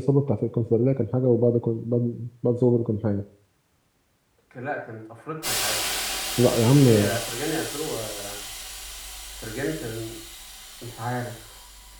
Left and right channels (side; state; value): both; identical; correlation 1.00